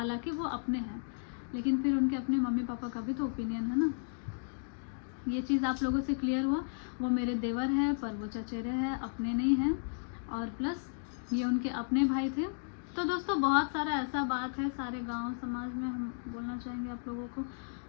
वो अपने हैं, लेकिन फिर उनके अपने मम्मी पापा का भी तो ओपिनियन है ना। ये चीज़ आप लोगों से क्लियर हुआ। वो मेरे देवर हैं पर वो चचेरे हैं, अपने नहीं हैं, और प्लस ये उनके अपने भाई थे। तो दोस्तों बहुत सारा ऐसा बात है, सारे गांव समाज में हम बोलना चाहेंगे आप लोगों को।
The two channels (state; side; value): silent; right; digital silence